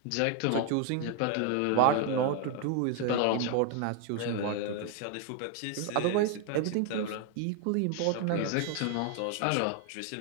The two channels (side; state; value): both; different; correlation 0.01